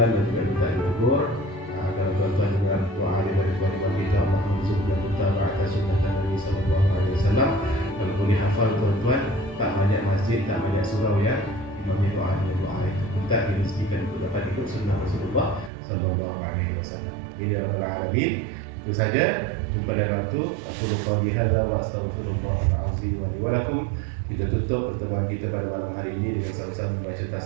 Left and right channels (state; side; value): drops out; left; at 15.7 s